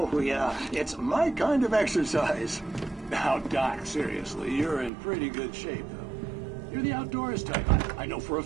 yeah. It's my kind of exercise. Now, Doc, seriously, you're in pretty good shape, though. You're the outdoors type. I know for a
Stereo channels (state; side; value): drops out; left; at 4.9 s